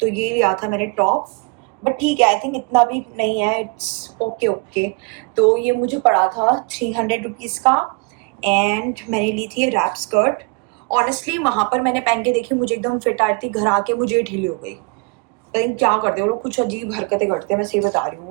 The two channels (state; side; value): quieter; left; 31.6 dB